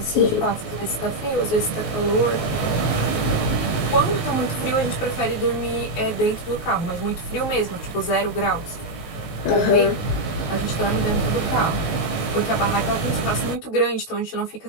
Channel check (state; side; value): late; right; 19 ms